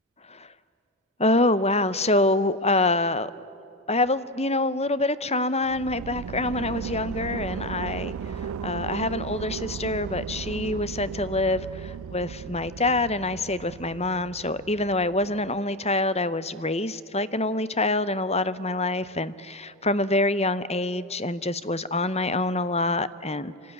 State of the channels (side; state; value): both; normal; correlation 0.17